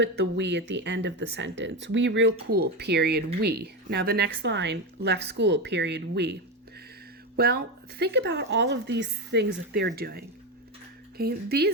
the we at the end of the sentence? We real cool, period, we. Now the next line, left school, period, we. Well, think about all of these things that they're doing. Okay,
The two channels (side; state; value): both; normal; correlation 0.15